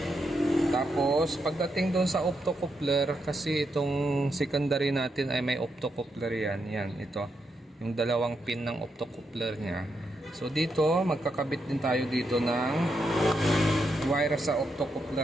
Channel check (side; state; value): both; normal; correlation 0.82